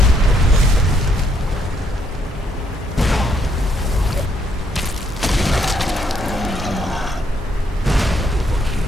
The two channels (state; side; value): normal; both; correlation 0.72